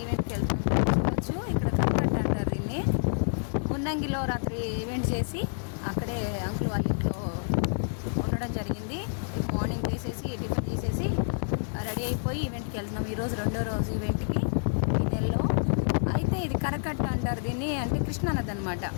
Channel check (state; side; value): silent; right; digital silence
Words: ఈవెంట్కి వెళ్తున్నాను. చూడవచ్చు, ఇక్కడ కనకట్ట అంటారు దీన్ని. మున్నంగిలో రాత్రి ఈవెంట్ చేసి అక్కడే అంకుల్ వాళ్ళ ఇంట్లో ఉండడం జరిగింది. రేపు మార్నింగ్ లేసేసి టిఫిన్ చేసేసి రెడీ అయిపోయి ఈవెంట్కి వెళ్తున్నాం. ఈరోజు రెండో రోజు ఈవెంట్కి ఈ నెలలో. అయితే ఇది కరకట్ట అంటారు దీన్ని, అంటే కృష్ణానది అనమాట.